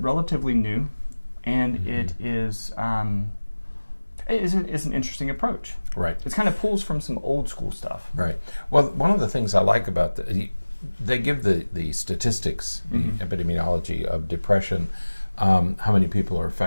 new, and it is an interesting approach. Right. It kind of pulls from some old school stuff. Right. Well, one of the things I like about they give the statistics, the epidemiology of depression, how many people are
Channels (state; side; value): inverted; both; correlation -1.00